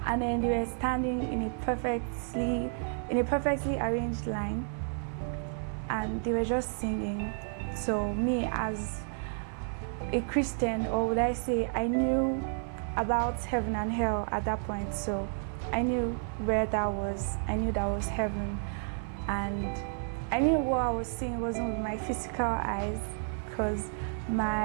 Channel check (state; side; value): silent; left; 57 dB below the other